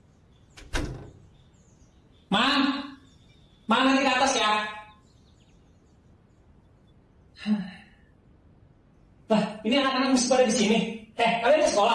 kelas ya. Lah, ini anak-anak masih pada di sini. Kalian ke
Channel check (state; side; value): identical; both; correlation 1.00